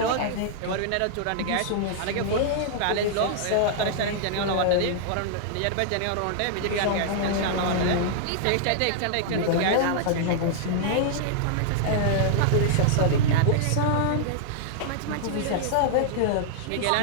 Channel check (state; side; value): different; both; correlation -0.01